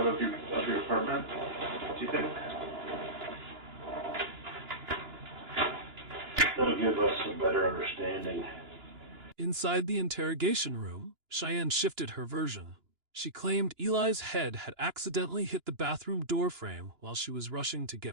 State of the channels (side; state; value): left; late; 2.9 ms